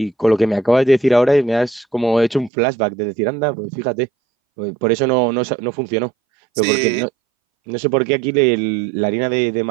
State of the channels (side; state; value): left; drops out; at 2.5 s